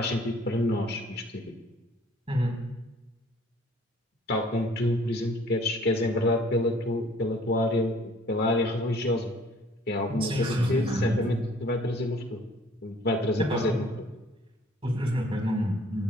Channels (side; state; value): both; normal; correlation 0.56